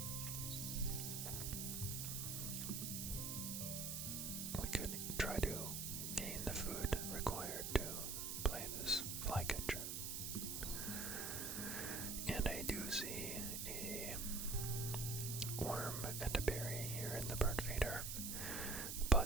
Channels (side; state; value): right; noise; hiss, 3 dB below the sound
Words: we could try to gain the food required to play this flycatcher. And I do see a worm and a berry here in the bird feeder,